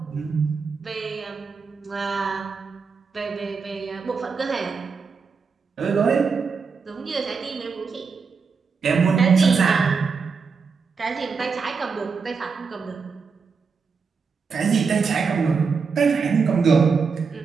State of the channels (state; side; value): quieter; left; 5.2 dB